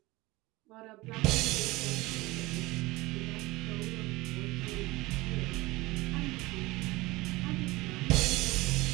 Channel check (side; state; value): left; quieter; 21.0 dB